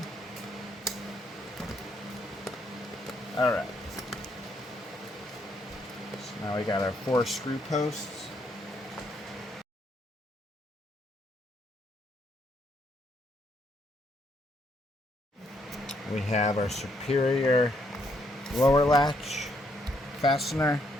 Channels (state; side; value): normal; both; correlation 0.73